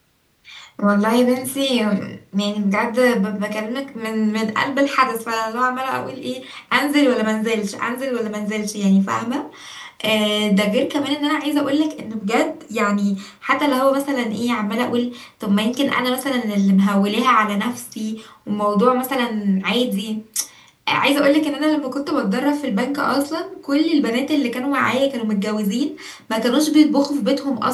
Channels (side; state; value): both; identical; correlation 1.00